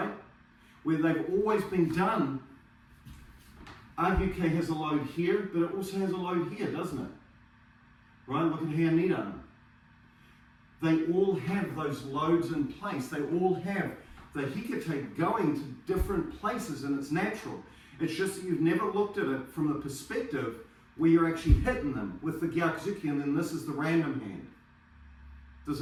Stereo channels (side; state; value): both; identical; correlation 1.00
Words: Where they've always been done. Agyuke has a load here, but it also has a load here, doesn't it? Right? Look at here, Nidan. They all have those loads in place. They all have the hikite going to different places, and it's natural. It's just that you've never looked at it from the perspective where you're actually hitting them with the gyakuzuki, and then this is the random hand. Does